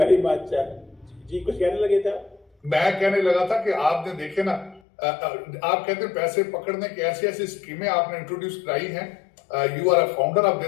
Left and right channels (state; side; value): drops out; right; at 4.8 s